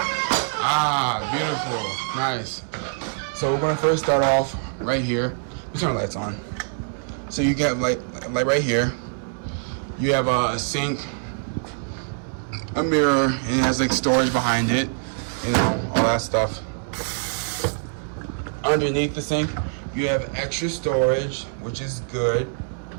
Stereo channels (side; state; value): left; silent; digital silence